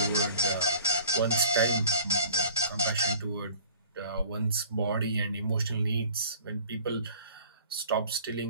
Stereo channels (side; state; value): both; inverted; correlation -0.48